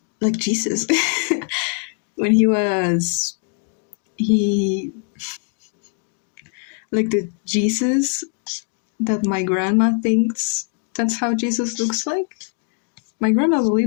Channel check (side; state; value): right; quieter; 39.6 dB